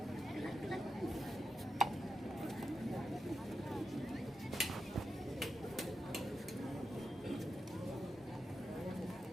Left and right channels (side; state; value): both; normal; correlation 0.87